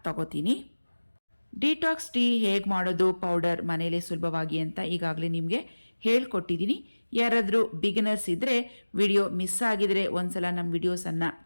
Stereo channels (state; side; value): inverted; both; correlation -1.00